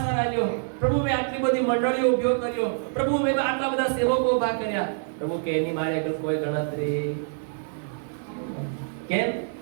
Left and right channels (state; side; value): silent; left; 61 dB below the other